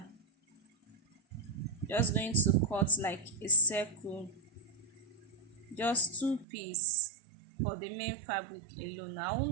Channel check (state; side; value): drops out; left; at 6.5 s